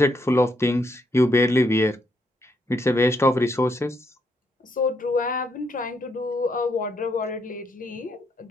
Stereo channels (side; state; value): both; normal; correlation 0.75